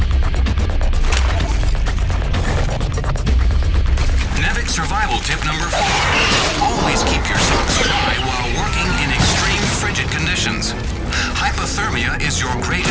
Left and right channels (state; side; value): identical; both; correlation 1.00